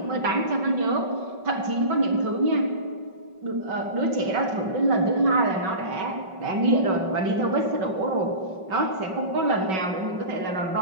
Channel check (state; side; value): late; left; 5.3 ms